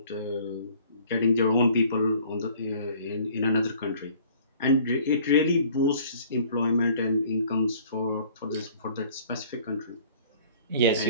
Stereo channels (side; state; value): both; inverted; correlation -0.53